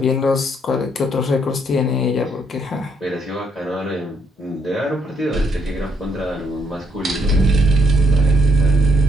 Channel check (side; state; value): both; normal; correlation 0.71